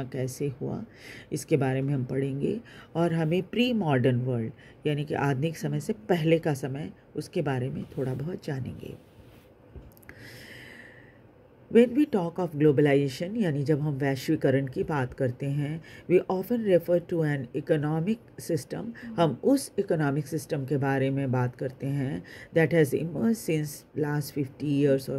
कैसे हुआ, इसके बारे में हम पढ़ेंगे। और हमें प्री मॉडर्न वर्ल्ड यानी कि आधुनिक समय से पहले का समय, उसके बारे में थोड़ा बहुत जानेंगे। When we talk of globalization, यानी जब हम वैश्वीकरण की बात करते हैं, we often refer to an economic system, हम उस economic system के बारे में बात करते हैं that has emerged since last 50 years or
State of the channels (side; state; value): both; identical; correlation 1.00